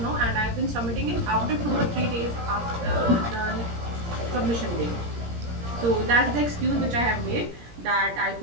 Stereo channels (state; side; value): late; left; 17 ms